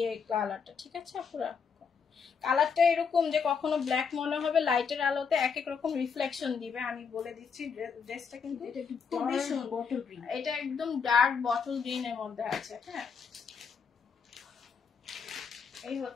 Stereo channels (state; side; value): quieter; right; 6.0 dB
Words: কালারটা, ঠিক আছে পুরো। কালারটা এরকম যে কখনো ব্ল্যাক মনে হবে, লাইটের আলোতে এক এক রকম রিফ্লেকশন দিবে। আমি বলে দিচ্ছি, ড্রেসটা কিন্তু খুবই সুন্দর। এটা একদম ডার্ক বটল গ্রিন এর মধ্যে আছে। হ্যাঁ, এই